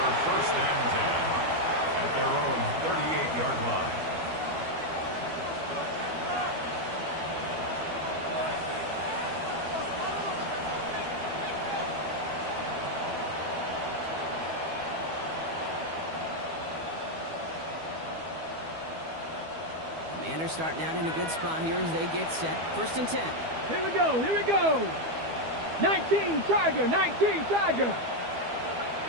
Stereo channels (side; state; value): left; late; 12 ms